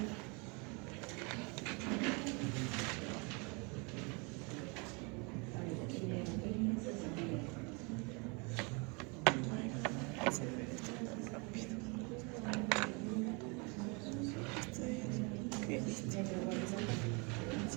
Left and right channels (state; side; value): quieter; left; 31.1 dB